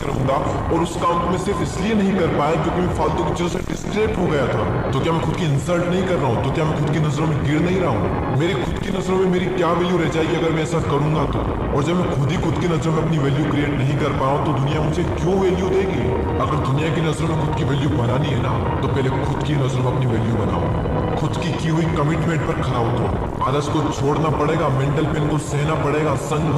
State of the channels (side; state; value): both; identical; correlation 1.00